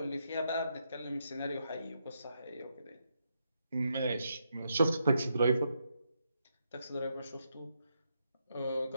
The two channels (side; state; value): both; inverted; correlation -0.81